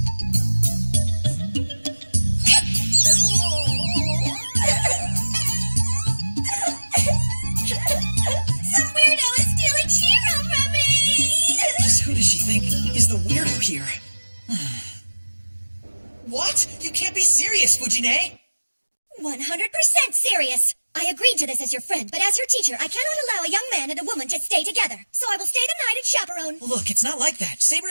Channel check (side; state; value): both; inverted; correlation -1.00